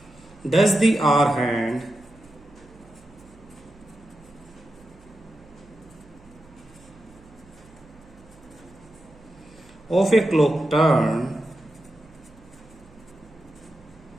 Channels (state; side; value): noise; right; hum, 25 dB below the sound